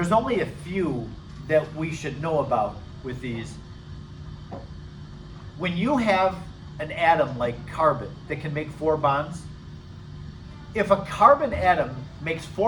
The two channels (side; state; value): both; identical; correlation 1.00